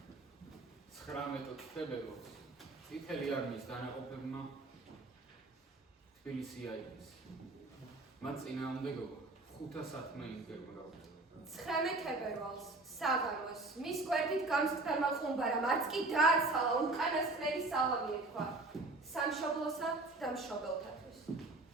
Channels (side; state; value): left; quieter; 3.1 dB